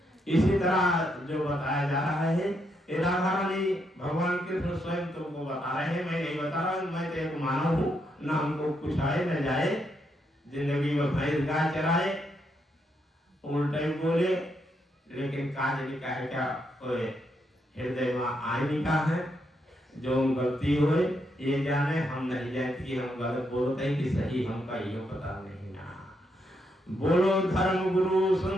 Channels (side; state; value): both; normal; correlation 0.78